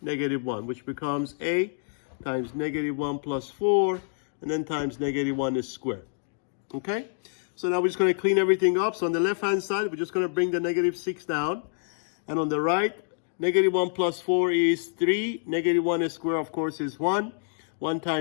-1, which becomes a times -1 plus 4, and then times -1 is squared. Okay? So now we're just going to clean everything up. So on the left-hand side, we're just going to bring the -6 down. And on the right, -1 plus 4 is 3. -1 is square, of course, is 1. 1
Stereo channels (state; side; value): silent; right; digital silence